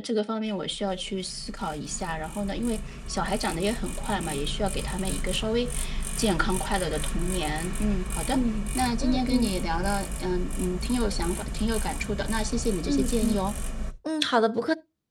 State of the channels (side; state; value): both; identical; correlation 1.00